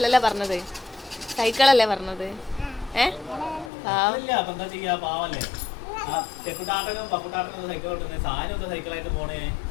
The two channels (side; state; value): right; drops out; at 3.7 s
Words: പറഞ്ഞത്, സൈക്കിളല്ലേ പറഞ്ഞത്. എന്താ ചെയ്യാ, പാവല്ലേ. ചെക്കുട്ടാട്ടനും പക്കുട്ടാട്ടനും സൈക്കിൾ ഓട്ടുന്നത്, സാധനം സൈക്കിളായിട്ട് പോണേ.